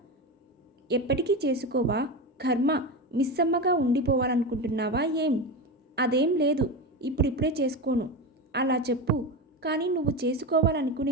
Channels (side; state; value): both; normal; correlation 0.20